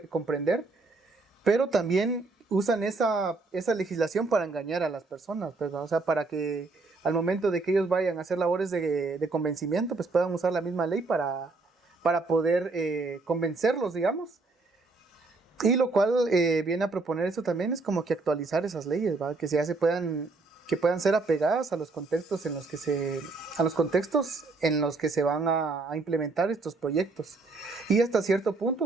comprender, pero también usan esa legislación para engañar a las personas, pues, ¿no? O sea, para que al momento de que ellos vayan a hacer labores de convencimiento, pues puedan usar la misma ley para poder convencerlos, digamos. Y lo cual viene a proponer eso también es como que actualizar esas leyes, ¿va? Que puedan ser apegadas a los contextos en los que se van a implementar estos proyectos. Y hasta cierto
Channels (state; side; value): quieter; left; 3.6 dB